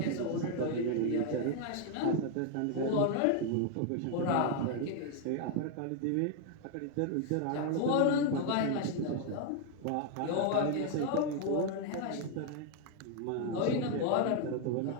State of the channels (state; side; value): different; both; correlation 0.00